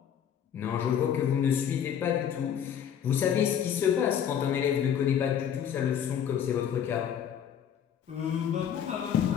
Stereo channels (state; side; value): quieter; right; 8.9 dB